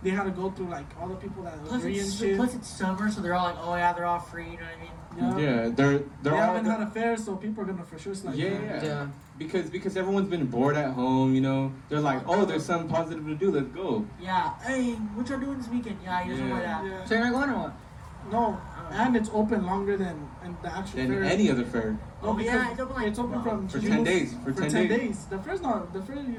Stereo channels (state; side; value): identical; both; correlation 1.00